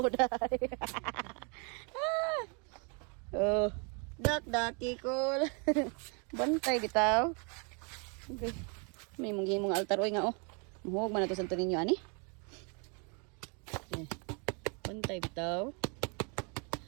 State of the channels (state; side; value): quieter; left; 35.2 dB